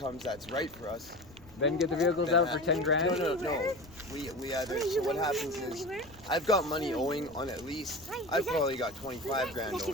that's right for us. Then get the vehicles out for 10 grand. No. We either. So what happens is, I've got money owing on at least. I've probably got 25 grand owing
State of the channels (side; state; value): left; noise; rumble, 22 dB below the sound